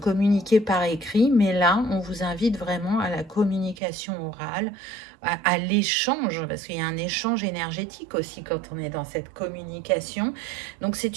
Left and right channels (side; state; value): left; drops out; at 3.8 s